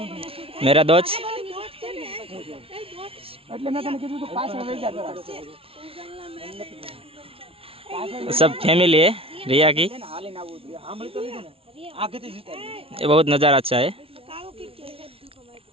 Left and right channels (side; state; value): left; late; 0.27 ms